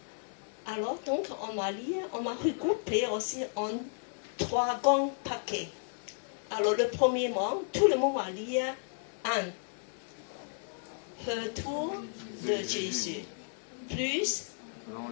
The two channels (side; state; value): right; silent; 56 dB below the other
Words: Alors, donc, on va lire, on va regrouper aussi en 3 grands paquets. Alors, le premier mot, tout le monde va lire 1. Retour de Jésus. Plus